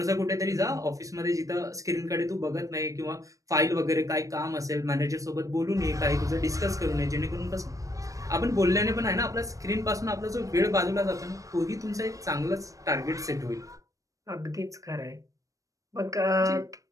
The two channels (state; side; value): late; left; 0.16 ms